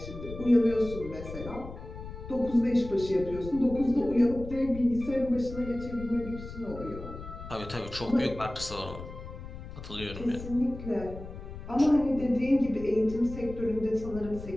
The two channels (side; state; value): left; noise; rumble, 11 dB below the sound